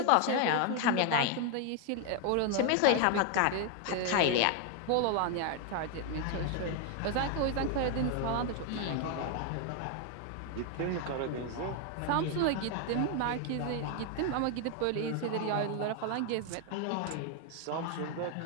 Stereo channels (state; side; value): different; both; correlation 0.00